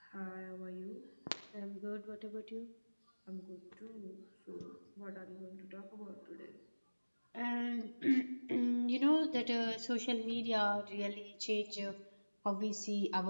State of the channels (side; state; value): both; inverted; correlation -1.00